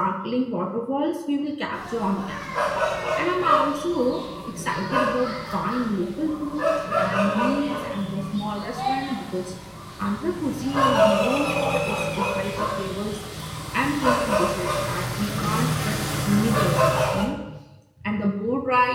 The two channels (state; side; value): identical; both; correlation 1.00